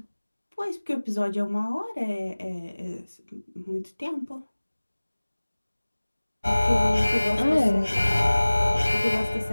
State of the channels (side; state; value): both; inverted; correlation -1.00